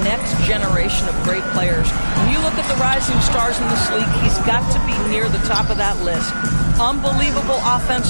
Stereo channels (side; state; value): both; inverted; correlation -1.00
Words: next generation of great players. When you look at the rising stars in this league, he's got to be near the top of that list. Unbelievable